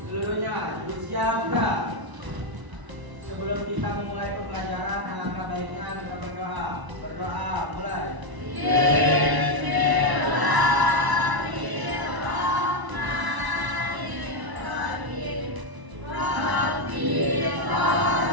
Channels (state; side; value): late; left; 1.0 ms